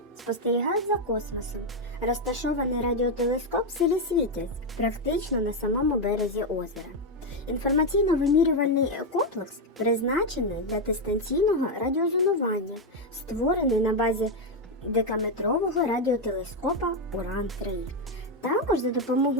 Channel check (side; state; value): both; normal; correlation 0.04